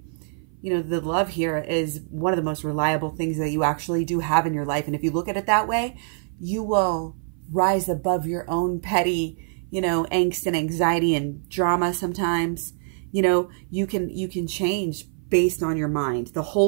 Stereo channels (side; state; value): left; silent; 56 dB below the other